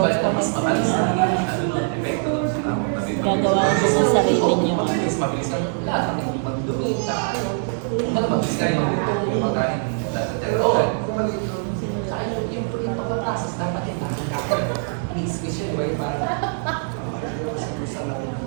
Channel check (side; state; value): left; silent; 57 dB below the other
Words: ko gagawa ko sa sarili niyo. Mabilis lang lahat ng magdumi. Mabilis kayo yung pagkain. Oo. Yung pagkaprocess dapat yung lahat.